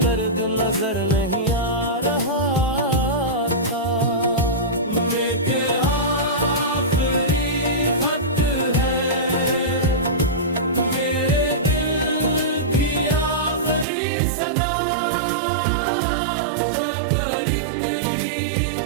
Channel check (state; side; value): drops out; left; at 13.9 s